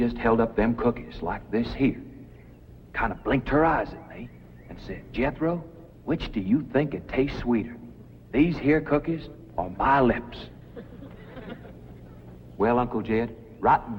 held up them cookies like this here, kind of blinked her eyes at me, and said, "Jethro, which do you think it tastes sweeter, these here cookies or my lips?" Well, Uncle Jed, right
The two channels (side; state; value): both; identical; correlation 1.00